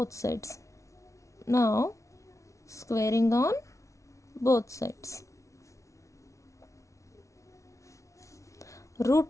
sides. Now squaring on both sides. Root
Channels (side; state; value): right; late; 0.15 ms